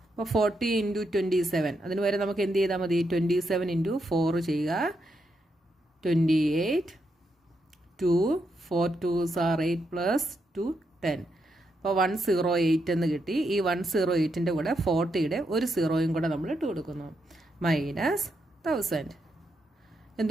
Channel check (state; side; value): normal; both; correlation 0.81